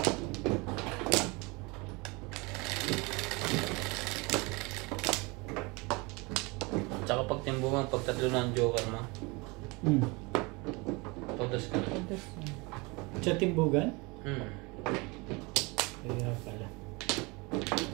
Tsaka pag timbungan, pag tatlo na ang joker mo, todos ka na. Todos na. Sa timbugan? Kaya pala.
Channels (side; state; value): left; quieter; 26.6 dB